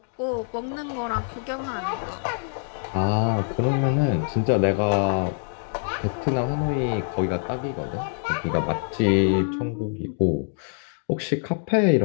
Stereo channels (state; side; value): silent; right; digital silence